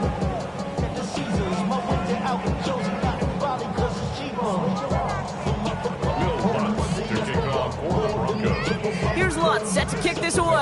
Here's Lutz, set to kick this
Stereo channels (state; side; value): identical; both; correlation 1.00